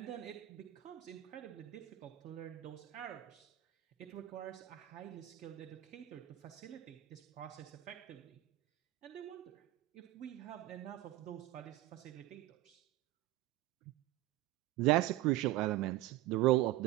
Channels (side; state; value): left; quieter; 16.1 dB